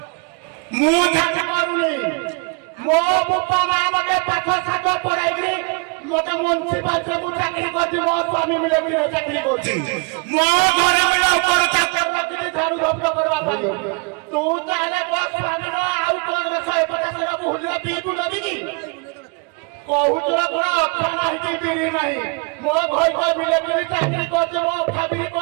ମୁଁ ଝାଡୁ କରୁନି ମୋ ବାପା ମା ମତେ ପାଠ ସାଠ ପଢାଇକି ମତେ ମ୍ୟୁନିସିପାଲିଟିରେ ମୁଁ ଚାକିରି କରିଛି ମୋ ସ୍ୱାମୀ ମିଳିମିଳିରେ ଚାକିରି କରୁଛି ମୋ ଘରେ ବି ନୌକର ଚାକର ରଖିଛି ଝାଡୁ ଝପଟ କରିବା ପାଇଁ ତୁ ତାହେଲେ ମୋ ସ୍ୱାମୀର ଆଉ କଣ 150 ଭୁଲିର ପିଇକୁ ନେବି କି କହୁଛର କଣ ଅଖା ନାହିଁ କି ବିରି ନାହିଁ ମୋ ଘର ମିଳିମିଳି ଚାକିରି କରୁଛି ମୋ ଅଖା ବିରି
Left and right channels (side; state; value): left; quieter; 32.6 dB